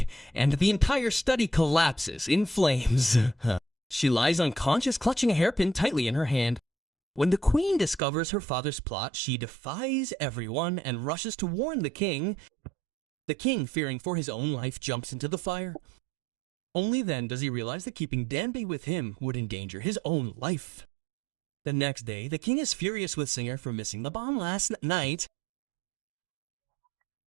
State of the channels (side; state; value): left; drops out; at 8.0 s